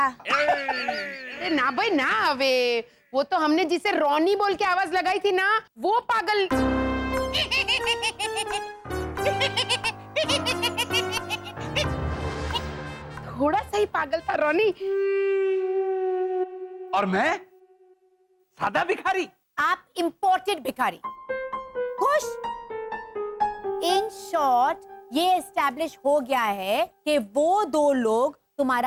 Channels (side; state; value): both; identical; correlation 1.00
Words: अरे ना भाई ना, अबे वो तो हमने जिसे रॉनी बोल के आवाज लगाई थी ना, वो पागल। थोड़ा सा ही पागल था रॉनी। और मैं सादा भिखारी? आप इंपोर्टेड भिखारी। खुश? इन शॉर्ट ये एस्टैब्लिश हो गया है कि वो दो लोग